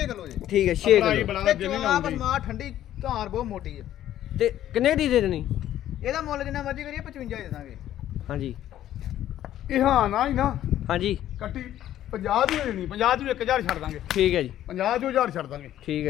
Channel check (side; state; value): right; quieter; 12.2 dB